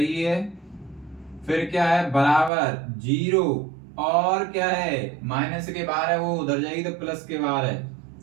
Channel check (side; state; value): left; drops out; at 2.5 s